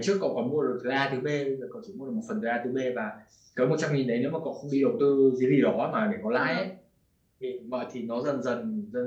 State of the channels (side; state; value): both; identical; correlation 1.00